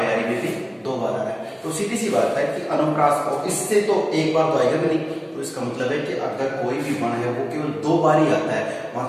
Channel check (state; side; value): identical; both; correlation 1.00